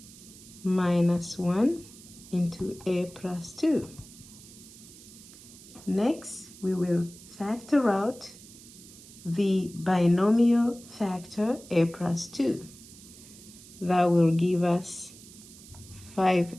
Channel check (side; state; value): right; noise; hiss, 19 dB below the sound